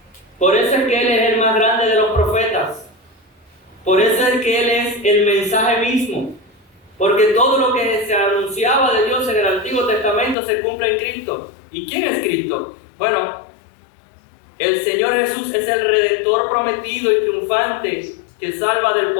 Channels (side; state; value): right; drops out; at 10.4 s